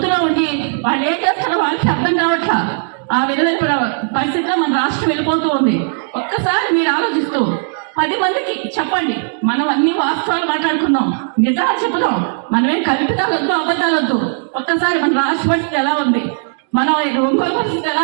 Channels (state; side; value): silent; left; digital silence